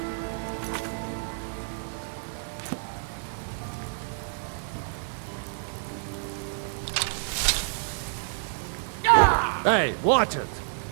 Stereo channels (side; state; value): left; silent; digital silence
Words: Hey, watch it!